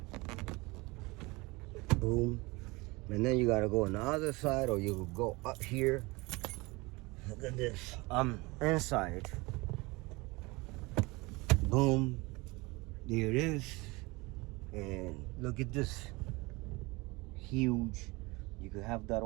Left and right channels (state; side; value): quieter; left; 24.0 dB